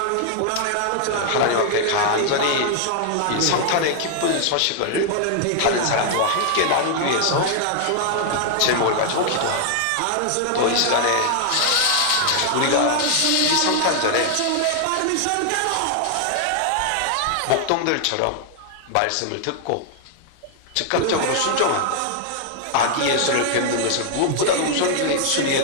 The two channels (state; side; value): different; both; correlation 0.00